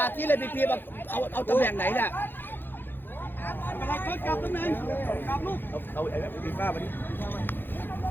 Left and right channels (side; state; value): right; late; 0.098 ms